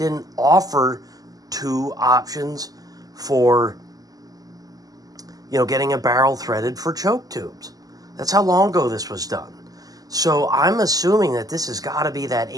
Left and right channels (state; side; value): late; left; 0.17 ms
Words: offer two options for getting a barrel threaded for choke tubes. That's how long ago this was done. So I'm assuming that this has got to be that